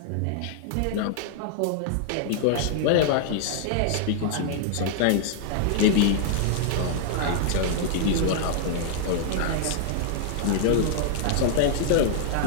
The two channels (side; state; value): both; different; correlation -0.01